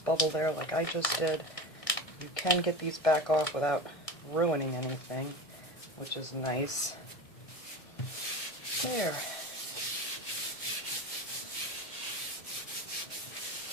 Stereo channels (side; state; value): right; late; 1.6 ms